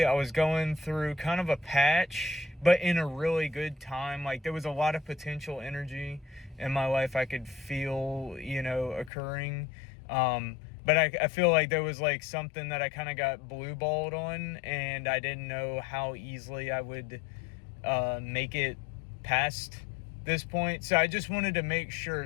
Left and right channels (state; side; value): drops out; right; at 9.1 s